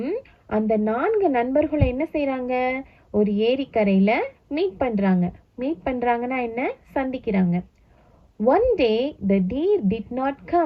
அந்த 4 நண்பர்களும் என்ன செய்றாங்க? ஒரு ஏரிக்கரையில மீட் பண்றாங்கன்னா என்ன? சந்திக்கிறாங்க. One day the deer did not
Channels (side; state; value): both; identical; correlation 1.00